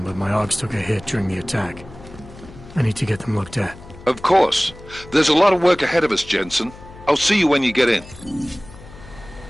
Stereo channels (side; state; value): left; noise; hum, 18 dB below the sound